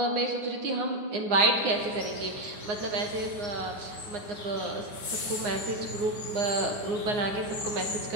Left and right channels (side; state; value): left; late; 9.7 ms